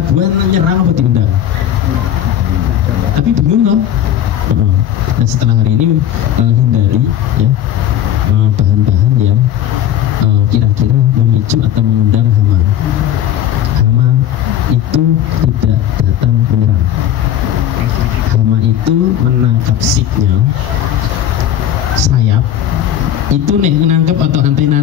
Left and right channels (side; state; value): right; quieter; 10.7 dB